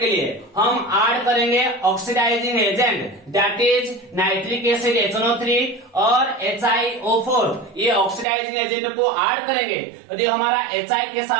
लिए हम ऐड करेंगे oxidising agent, that is nitric acid HNO3 और HiO4। ये ऑक्सीडाइजिंग एजेंट को ऐड करेंगे। यदि हमारा HI के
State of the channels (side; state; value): left; drops out; at 8.2 s